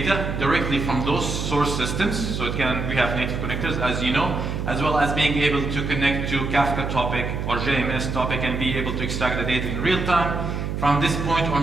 directly from those source systems, so we have native connectors, as you know, as well as being able to connect to Kafka topic or JMS topic and be able to extract the data in real time. From this point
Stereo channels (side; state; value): right; noise; hum, 3 dB below the sound